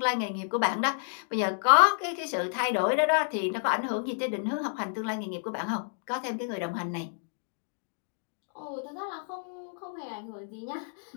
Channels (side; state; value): right; silent; digital silence